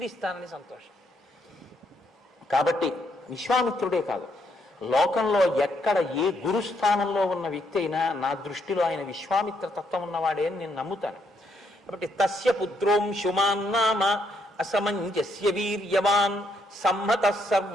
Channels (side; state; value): both; normal; correlation 0.74